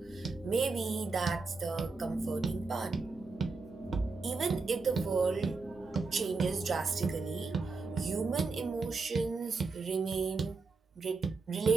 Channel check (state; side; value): quieter; left; 4.2 dB